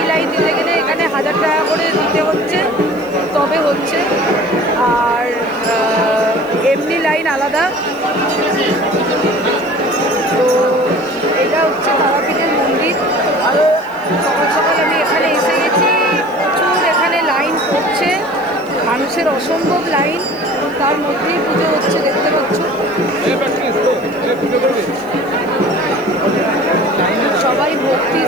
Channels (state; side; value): noise; left; hiss, 27 dB below the sound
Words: লাইন দিতে গেলে এখানে 1000 টাকা করে দিতে হচ্ছে, তবে হচ্ছে। আর এমনি লাইন আলাদা। তো এটা হচ্ছে তারাপীঠের মন্দির। আরও সকাল সকাল আমি এখানে এসে গেছি, প্রচুর এখানে লাইন পড়ছে, মানুষের অসম্ভব লাইন। তার মধ্যেই পুজো হচ্ছে, দেখতে পাচ্ছ। সবাই ভক্তি